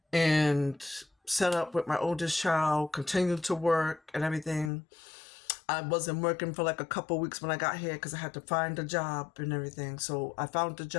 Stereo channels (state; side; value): drops out; right; at 4.7 s